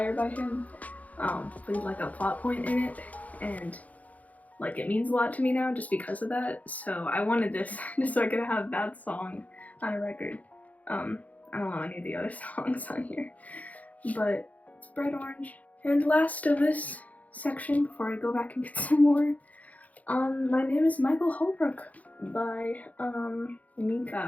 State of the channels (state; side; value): late; right; 0.074 ms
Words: by him with like a plot point in it, and like it means a lot to me now just because of that. So I wanted this just so I could have that song on a record. I don't know any of the other songs on here, but it's bright orange. And last of this section before I go back and get some more, My Name is Michael Holbrook by